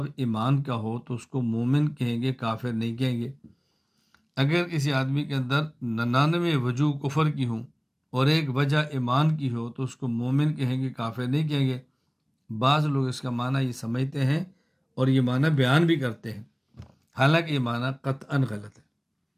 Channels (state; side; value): identical; both; correlation 1.00